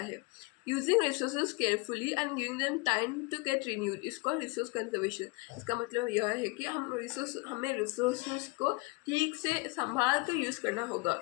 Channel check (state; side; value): quieter; right; 26.6 dB